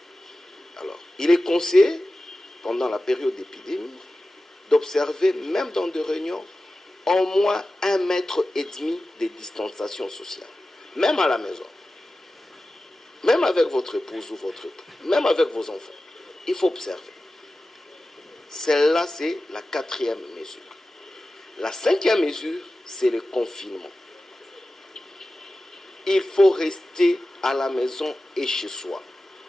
Alors, il est conseillé, pendant la période d'épidémie, d'observer, même dans des réunions, au moins 1,5 mètre de distanciation sociale. Même à la maison. Même avec votre épouse ou votre époux. Même avec vos enfants. Il faut observer. Celle-là, c'est la quatrième mesure. La cinquième mesure, c'est le confinement. Il faut rester à la maison et chez soi.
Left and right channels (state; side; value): normal; both; correlation 0.95